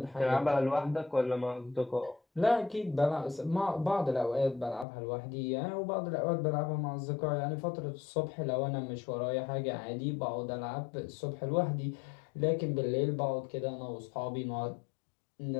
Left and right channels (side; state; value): right; drops out; at 4.9 s